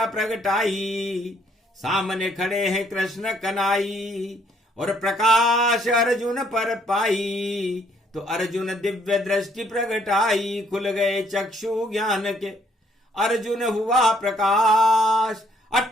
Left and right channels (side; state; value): both; normal; correlation 0.67